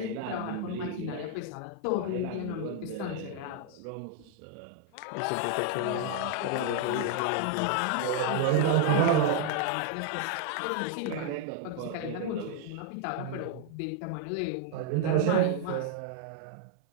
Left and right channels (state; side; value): different; both; correlation 0.00